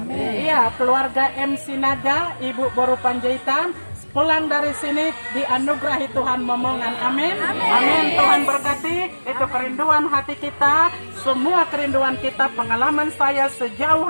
Iya, keluarga MC Naga, Ibu Boru Panjaitan, pulang dari sini dianugerahi Tuhan momongan. Amin. Amin. Tuhan berkati. Itu kerinduan hati kita, semua kerinduan kita, pengalaman saya sejauh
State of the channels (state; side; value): inverted; both; correlation -1.00